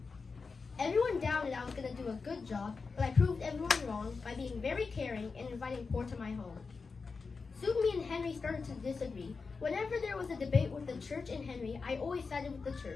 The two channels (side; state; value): right; quieter; 4.7 dB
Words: Everyone doubted I was going to do a good job, but I proved everyone wrong by being very caring and inviting poor to my home. Soon me and Henry started to disagree. Whenever there was a debate with the church and Henry, I always sided with the